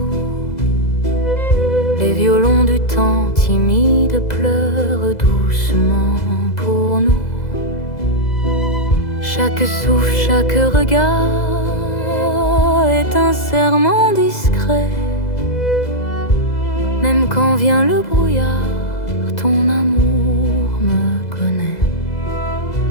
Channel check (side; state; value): right; late; 2.0 ms